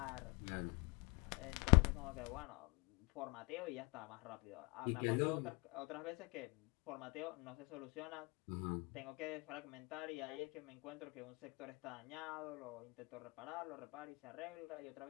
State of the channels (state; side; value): quieter; right; 28.4 dB